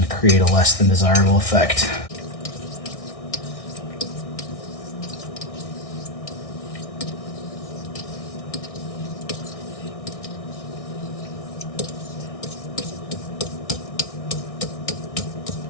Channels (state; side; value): late; right; 1.6 ms